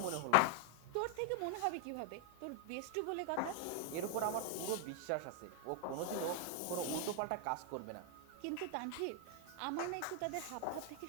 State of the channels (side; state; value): both; different; correlation 0.00